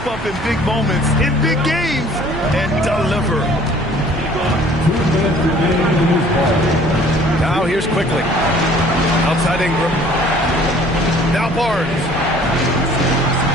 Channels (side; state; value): right; noise; hum, 13 dB below the sound